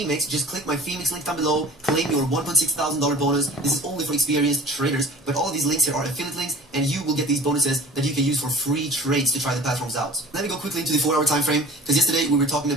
just click my Phoenix link down below. Claim your $1,600 bonus. This is only for experienced traders. But all of these links here are affiliate links, and you will get these bonuses that you can use for free trades to try the platforms out. Let me go quickly into the 4-hour time frame, because yesterday we were talking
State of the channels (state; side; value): normal; both; correlation 0.43